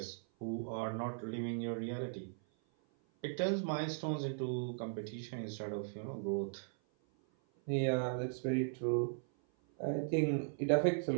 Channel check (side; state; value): left; silent; 52 dB below the other